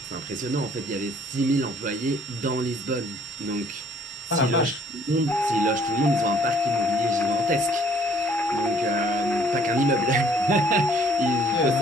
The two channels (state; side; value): normal; both; correlation 0.59